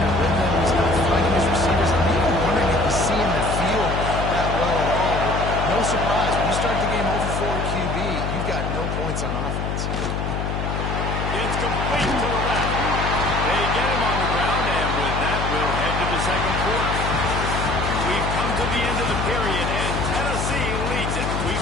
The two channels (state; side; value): noise; left; hum, 2 dB below the sound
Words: rhythm. He's not finding his receivers. I'm even wondering if he's seeing the field that well at all. But no surprise, when you start the game 0 for 4 QB, you've got no points on offense. It's complete to the left. They get him on the ground, and with that, we'll head to the second quarter. We've come to the end of the period, and Tennessee leads it. We